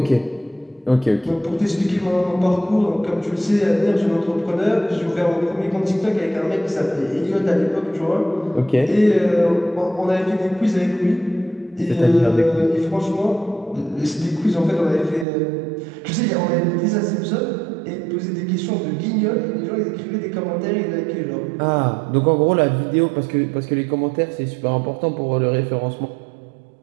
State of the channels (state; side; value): drops out; left; at 15.2 s